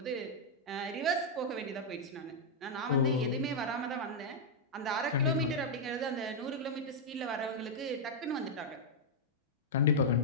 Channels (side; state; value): both; normal; correlation -0.04